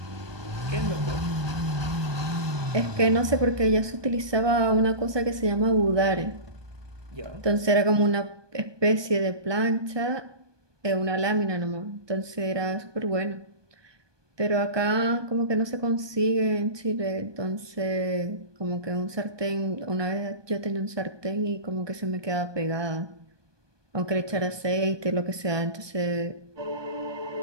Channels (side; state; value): left; late; 1.2 ms